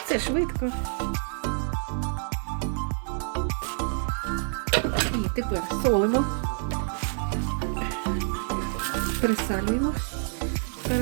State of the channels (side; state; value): left; silent; 60 dB below the other